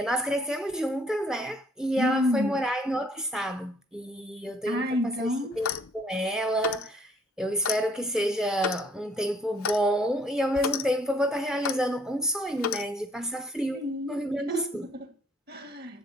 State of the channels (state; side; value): normal; both; correlation 0.63